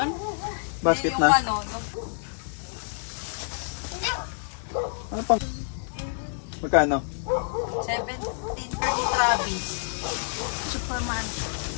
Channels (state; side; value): silent; right; 56 dB below the other